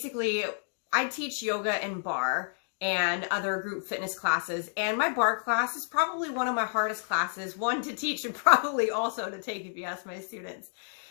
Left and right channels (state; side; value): silent; right; digital silence